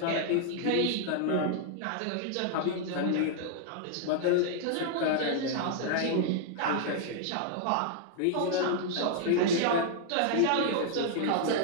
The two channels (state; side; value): different; both; correlation -0.01